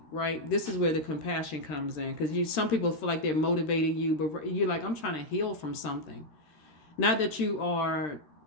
right? This is where the compassion comes in, because some people feel like they're motivating you, but you're like, I'm trying to heal from something. Not that you are,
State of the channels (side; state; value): right; late; 13 ms